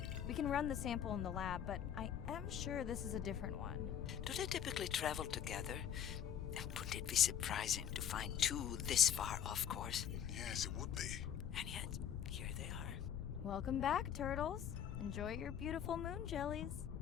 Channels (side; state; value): right; quieter; 9.1 dB